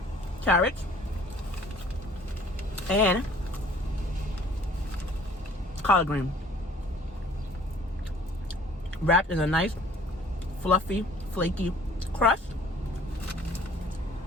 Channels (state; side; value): normal; both; correlation 0.54